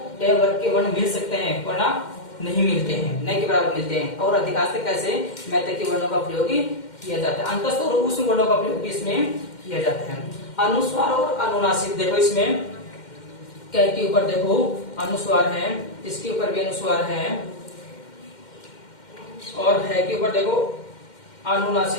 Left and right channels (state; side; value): late; right; 2.1 ms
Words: ट वर्ग के वर्ण मिल सकते हैं, वरना नहीं मिलते हैं, न के बराबर मिलते हैं। और अधिकांश कैसे मैतक के वर्णों का प्रयोग किया जाता है। अंतस्थ और उष्ण वर्णों का प्रयोग भी इसमें किया जाता है। अनुस्वार और अनुनासिक, देखो इसमें कै के ऊपर देखो अनुस्वार है, इसके ऊपर भी अनुस्वार है, और है के ऊपर देखो